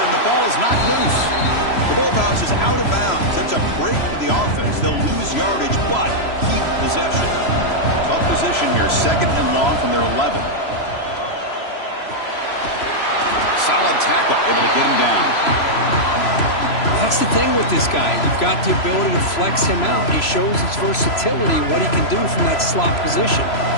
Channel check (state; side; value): late; right; 3.0 ms